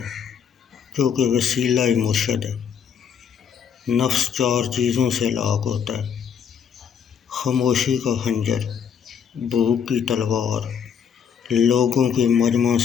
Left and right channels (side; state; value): right; quieter; 7.5 dB